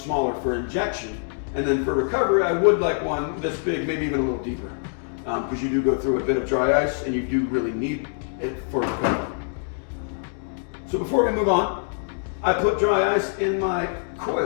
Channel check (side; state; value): right; silent; digital silence